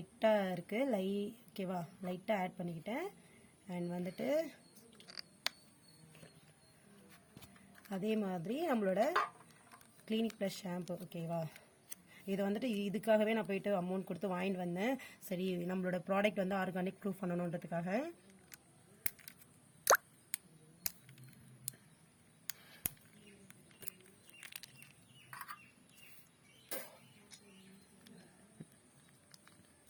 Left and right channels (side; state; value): both; identical; correlation 1.00